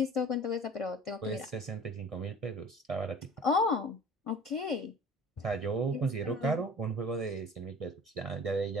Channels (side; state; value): both; normal; correlation 0.44